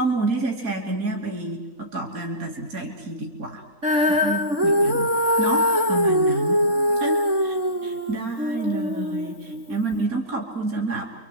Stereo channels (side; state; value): left; late; 3.6 ms